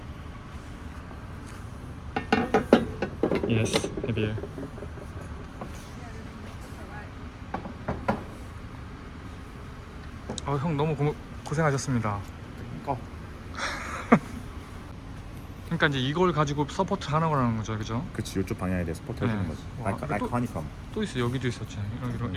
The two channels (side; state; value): both; identical; correlation 1.00